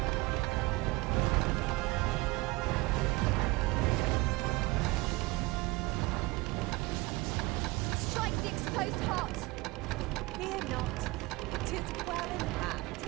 Strike the exposed heart. Fear not, 'tis well in hand.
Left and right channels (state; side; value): quieter; left; 22.7 dB